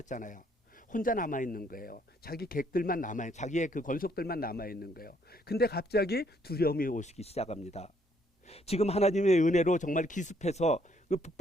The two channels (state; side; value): normal; both; correlation 0.68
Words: 혼자 남아있는 거예요. 자기 객들만 자기의 그 권속들만 남아있는 거예요. 근데 갑자기 두려움이 오시기 시작합니다. 지금 하나님의 은혜로 정말 기습해서 그